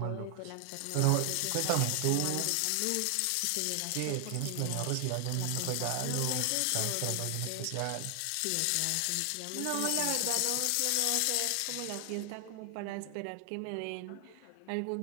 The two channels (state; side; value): different; both; correlation 0.00